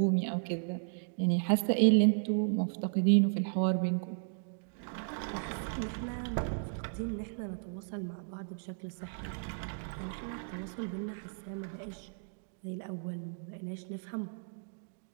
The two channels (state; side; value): silent; left; digital silence